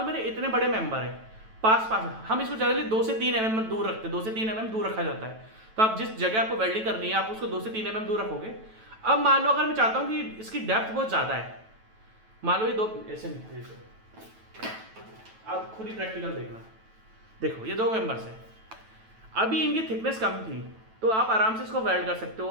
मेरे इतने बड़े मेंबर है पास हम इसको जनरली 2 से 3 mm दूर रखते हैं, 2 से 3 mm दूर रखा जाता है। तो आप जिस जगह आपको वेल्डिंग करनी है आप उसको 2 से 3 mm दूर रखोगे। अब मान लो अगर मैं चाहता हूं कि इसकी डेप्थ बहुत ज्यादा है, मान लो ये दो ऐसे नहीं, आप खुद ही प्रैक्टिकल देखना, देखो ये दो मेंबर्स है, अभी इनकी थिकनेस कम थी तो आप आराम से इसको वेल्ड कर सकते हो।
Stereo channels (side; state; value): left; late; 9.1 ms